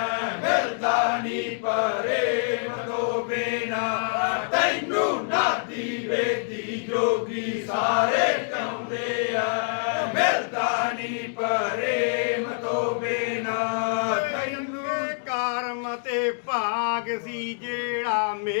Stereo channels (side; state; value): right; silent; digital silence